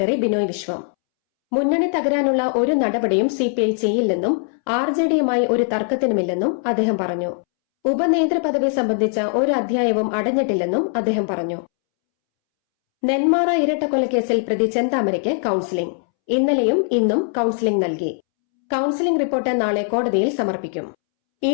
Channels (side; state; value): right; silent; 65 dB below the other